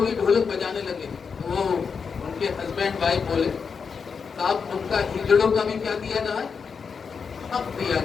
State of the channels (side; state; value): right; quieter; 5.8 dB